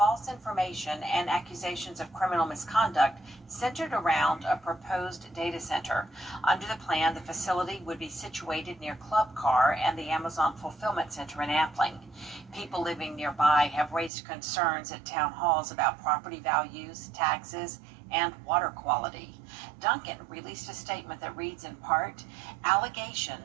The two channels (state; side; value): drops out; left; at 14.1 s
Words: information and accusations of criminal misconduct centered around a proposed data center. Under the plan, the facility would be situated near Club Car and the Amazon Fulfillment Center in Appling. People living nearby have raised concerns at town halls about property values, taxes, and water quality. Duncan released a statement that reads in part,